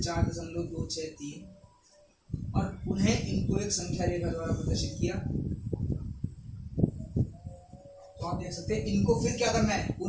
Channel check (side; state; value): both; identical; correlation 1.00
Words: 4.263 और पुनः इनको एक संख्या रेखा द्वारा प्रदर्शित किया। तो आप देख सकते हैं इनको फिर क्या करना है,